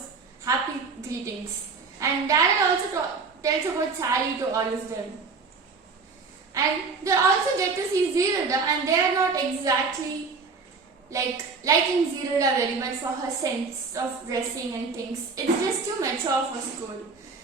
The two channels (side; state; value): left; quieter; 4.6 dB